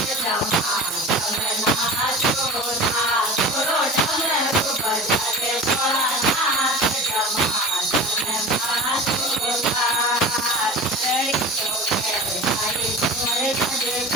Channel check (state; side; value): normal; both; correlation 0.36